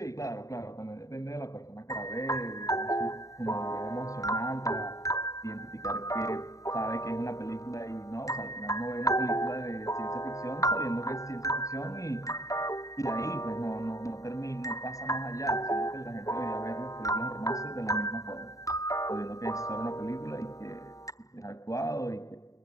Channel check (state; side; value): late; right; 0.16 ms